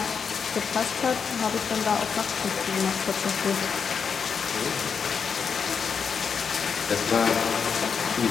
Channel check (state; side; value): quieter; right; 6.2 dB